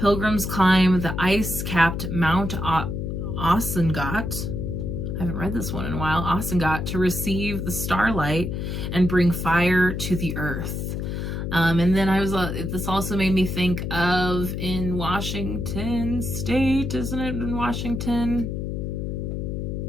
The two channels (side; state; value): left; noise; hum, 3 dB below the sound